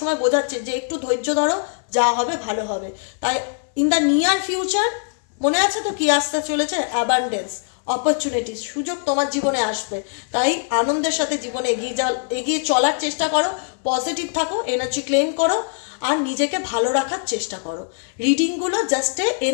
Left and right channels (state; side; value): silent; right; 61 dB below the other